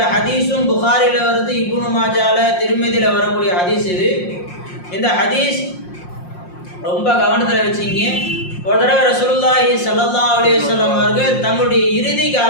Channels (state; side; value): late; right; 5.6 ms